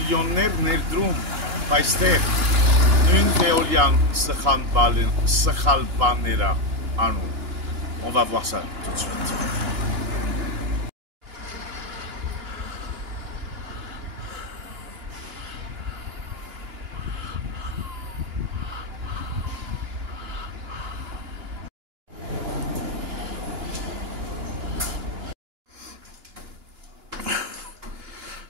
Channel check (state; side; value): late; left; 2.9 ms